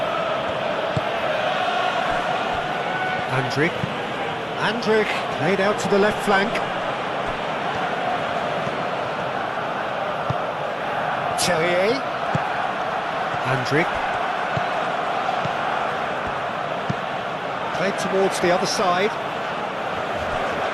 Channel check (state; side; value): identical; both; correlation 1.00